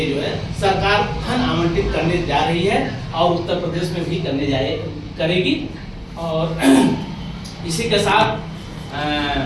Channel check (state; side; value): identical; both; correlation 1.00